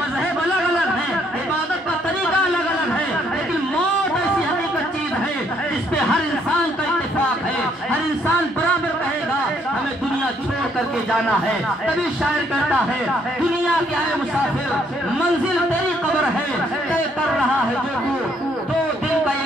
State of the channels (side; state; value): both; normal; correlation 0.69